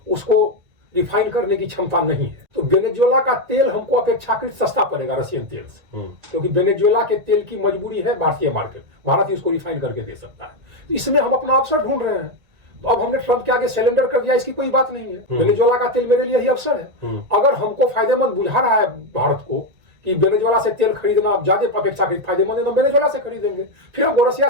उसको रिफाइन करने की क्षमता नहीं है। तो वेनेजुएला का तेल हमको अपेक्षाकृत सस्ता पड़ेगा रशियन तेल से, क्योंकि वेनेजुएला के तेल की मजबूरी है भारतीय मार्केट, भारत ही उसको रिफाइन करके दे सकता है। तो इसमें हम अपना अवसर ढूंढ रहे हैं। तो अब हमने ट्रंप के आगे सरेंडर कर दिया, इसकी कोई बात नहीं है। वेनेजुएला का तेल मेरे लिए ही अवसर है। अगर हमको फायदेमंद बुझा रहा है भारत को कि वेनेजुएला से तेल खरीदना अब ज्यादा अपेक्षाकृत फायदेमंद है, तो वेनेजुएला से खरीदेंगे। फिर हमको रशिया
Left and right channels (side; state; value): left; late; 2.0 ms